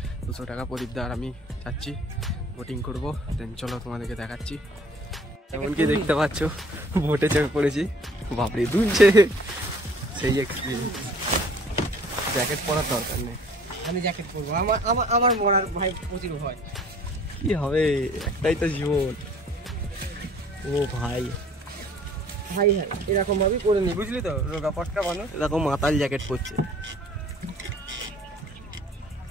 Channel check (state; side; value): normal; both; correlation 0.53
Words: 200 টাকা। প্রদীপদা আর আমি যাচ্ছি, বোটিং করব। দেন চলো তোমাদেরকে দেখাচ্ছি। এমনকি দেখতে পাচ্ছ বোটে চেপে পড়েছি, বাপরে দুলছে, সেই এক্সপিরিয়েন্স। জ্যাকেট পরার দরকার নেই, আমি জ্যাকেট পরবো। আমার মরার ভাই প্রচুর ভয়। কি হবে, একটাই তো জীবন। ও ভাই ভাই হ্যাঁ, এরকম ভাবেই করে নি, বুঝলি তো, রোগা পটকা মানুষ এরকম মাতাল জ্যাকেট পরছে।